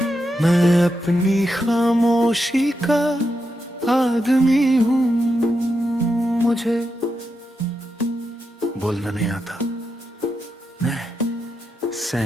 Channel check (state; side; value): normal; both; correlation 0.86